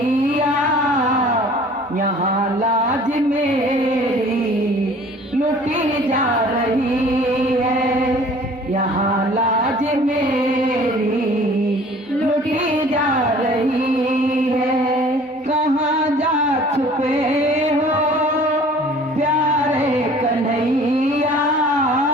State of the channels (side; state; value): both; normal; correlation 0.50